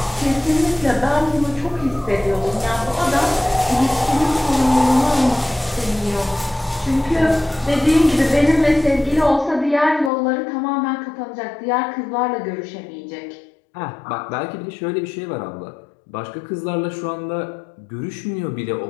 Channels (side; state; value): right; drops out; at 10.1 s